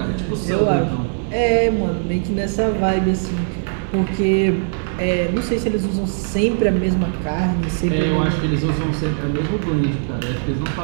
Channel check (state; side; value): silent; left; 66 dB below the other